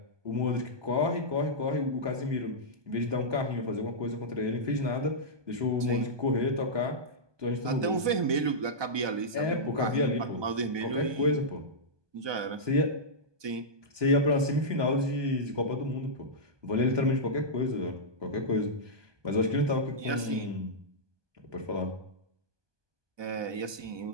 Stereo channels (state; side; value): late; left; 1.2 ms